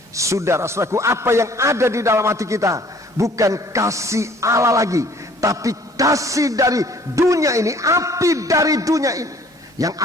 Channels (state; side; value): normal; both; correlation 0.56